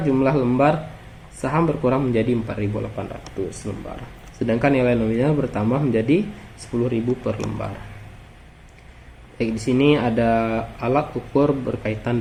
jumlah lembar saham berkurang menjadi 4.800 lembar, sedangkan nilai nominal bertambah menjadi 10.000 per lembar. Baik, di sini ada alat ukur berkaitan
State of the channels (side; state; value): both; identical; correlation 1.00